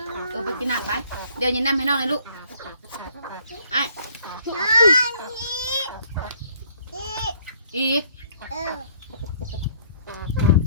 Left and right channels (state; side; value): inverted; both; correlation -0.61